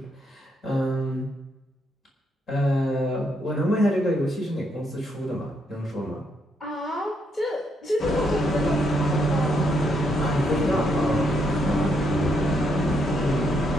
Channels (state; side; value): normal; both; correlation 0.76